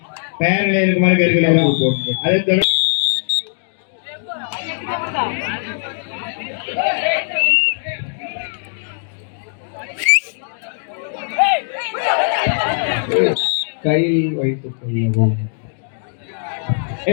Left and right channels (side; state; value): right; silent; digital silence